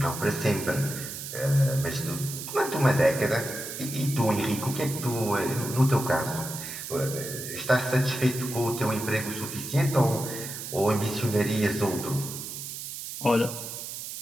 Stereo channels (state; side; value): noise; right; hiss, 8 dB below the sound